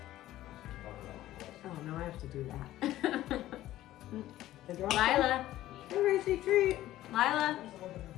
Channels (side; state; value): right; quieter; 14.5 dB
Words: Oh, now I have to do that. Lila. Hey, Gracie, treat. Lila.